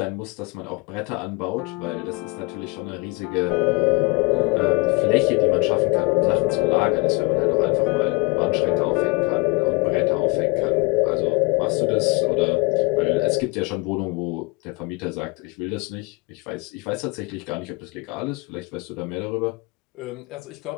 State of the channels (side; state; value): right; quieter; 27.8 dB